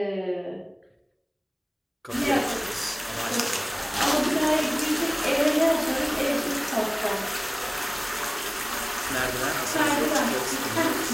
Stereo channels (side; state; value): both; identical; correlation 1.00